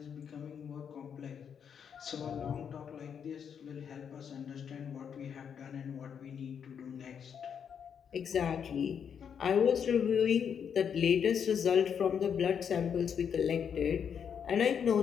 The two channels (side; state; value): right; quieter; 7.6 dB